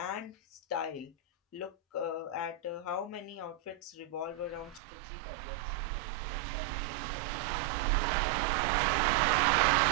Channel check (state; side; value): drops out; left; at 4.8 s